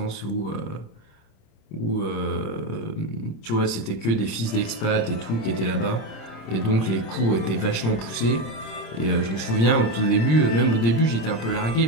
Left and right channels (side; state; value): right; late; 26 ms